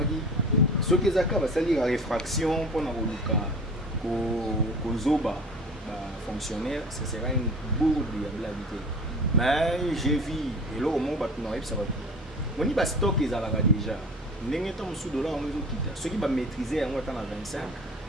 ce qui est la réfraction pour Zoba fonctionnaire, ce sera une bourde de viabilité. Mais j'ai vu, et là au moins, ça va tout. On y va stock les alaga déjà. N'engagez sous dollar, on Kita. Ceux qui va maîtriser en 25,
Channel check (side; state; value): both; normal; correlation 0.40